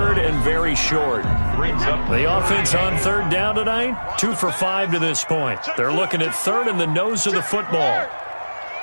and very short. The offense on 3rd down tonight, 2 for 5 to this point. They're looking at 3rd and the nose of the football.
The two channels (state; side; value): inverted; both; correlation -1.00